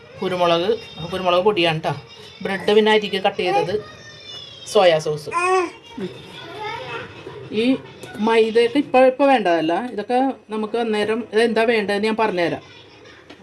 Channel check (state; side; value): identical; both; correlation 1.00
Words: കുരുമുളക് പൊടിയാണ് കേട്ടോ, ബ്രെഡ് പിന്നെ അരിക്ക് കട്ട് ചെയ്തത്, സോയാ സോസ്. ഈ മൈദയൊക്കെ ഇപ്പോൾ വേണ്ടതല്ല, ഇതൊക്കെ നമുക്ക് അന്നേരം ഇതെന്താ വേണ്ടതെന്ന് ഞാൻ പറഞ്ഞുതരാം.